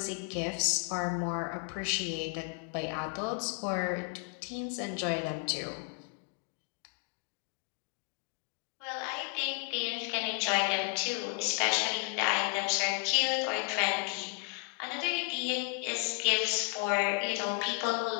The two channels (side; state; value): right; quieter; 33.3 dB